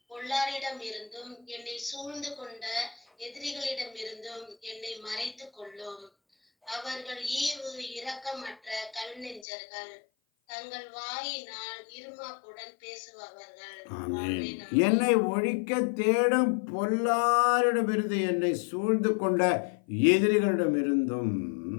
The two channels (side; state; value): right; drops out; at 9.5 s